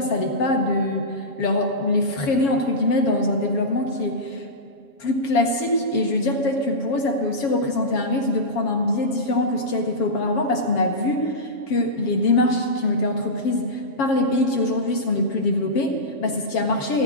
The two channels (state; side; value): late; right; 7.3 ms